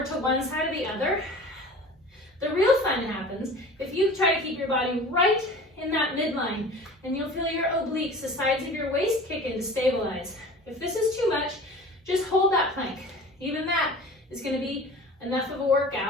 to one side or the other. The real fun happens if you try to keep your body right in that midline, and you'll feel your obliques, the sides of your waist, kick in to stabilize. If this is too much, just hold that plank. Even that is going to be enough of a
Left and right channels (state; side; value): normal; both; correlation 0.40